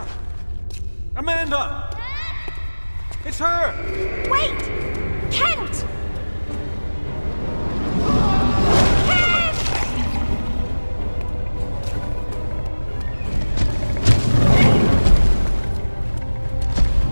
Amanda! It's her! Wait! Kent! Kent!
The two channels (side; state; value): both; inverted; correlation -1.00